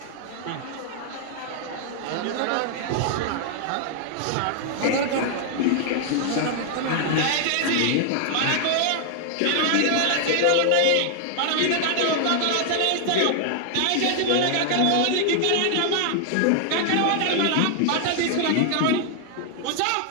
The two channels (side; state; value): both; different; correlation 0.00